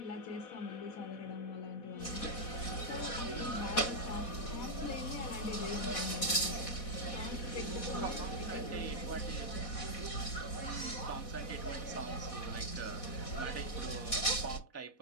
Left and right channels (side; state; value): right; late; 4.1 ms